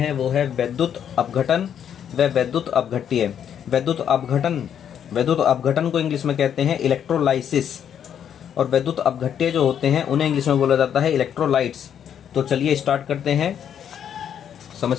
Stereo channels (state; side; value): quieter; right; 8.9 dB